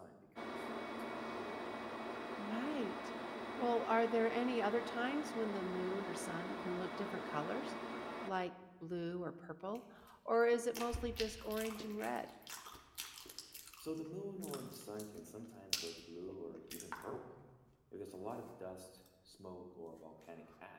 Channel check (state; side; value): identical; both; correlation 1.00